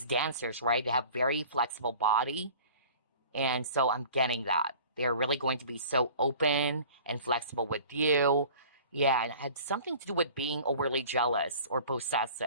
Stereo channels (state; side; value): inverted; both; correlation -0.44